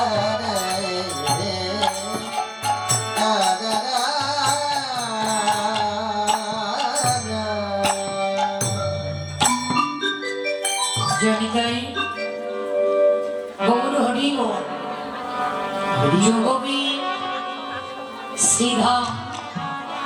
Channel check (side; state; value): both; identical; correlation 1.00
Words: জনিতাই গৌর হরি যোগবী শ্রীধাম